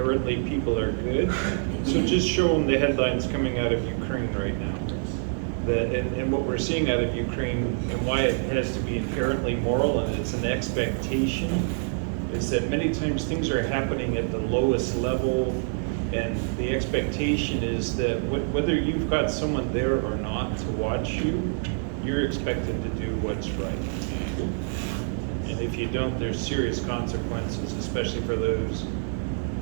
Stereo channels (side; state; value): left; silent; 61 dB below the other